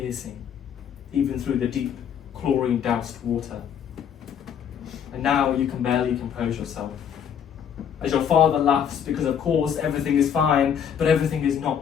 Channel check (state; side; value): quieter; right; 8.3 dB